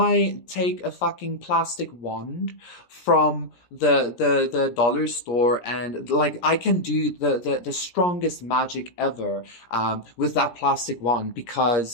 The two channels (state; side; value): late; right; 17 ms